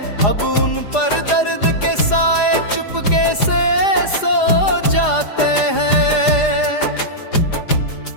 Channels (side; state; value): right; late; 4.9 ms